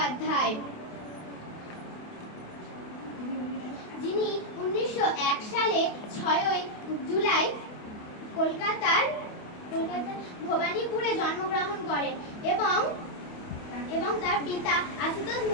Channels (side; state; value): right; late; 28 ms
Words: যিনি 1901 সালে 6 জুলাই কলকাতার ভবানীপুরে জন্মগ্রহণ করেন এবং তার পিতা আশুতোষ